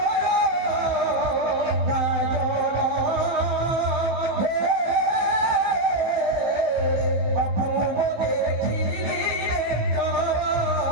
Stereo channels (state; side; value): late; left; 16 ms